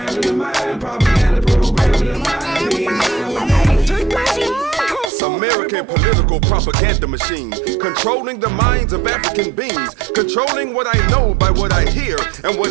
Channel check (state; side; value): drops out; left; at 5.1 s